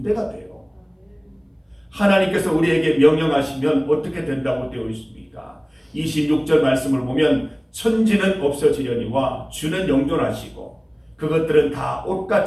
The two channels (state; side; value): identical; both; correlation 1.00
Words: 돼요. 하나님께서 우리에게 명령하시면 어떻게 된다고 되어 있습니까? 26절 말씀을 보면 천지는 없어지려니와 주는 영존하시고 그것들은 다